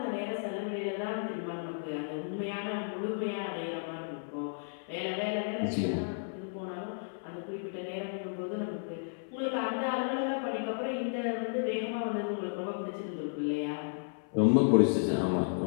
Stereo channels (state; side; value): silent; right; 56 dB below the other